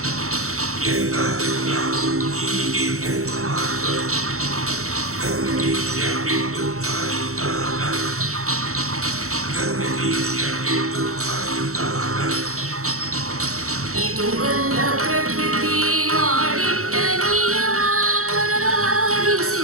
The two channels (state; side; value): late; left; 0.64 ms